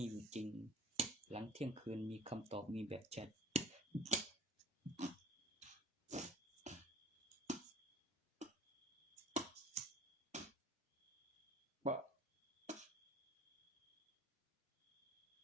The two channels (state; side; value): normal; both; correlation 0.46